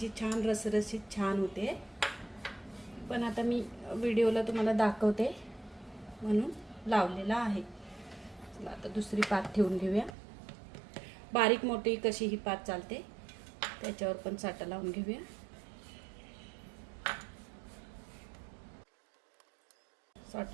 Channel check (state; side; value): drops out; left; at 10.1 s